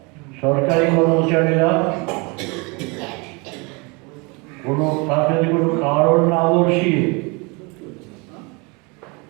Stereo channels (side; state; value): left; quieter; 29.3 dB